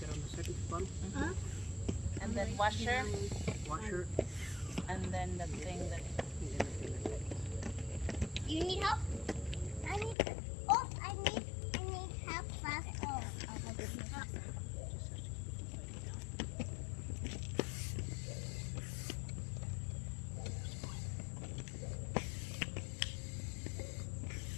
on the second bottom. and then washer, Washer. and then the thing that. You need help? I need. Oh, I need help fast. Oh, I'll help you.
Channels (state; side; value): drops out; right; at 10.2 s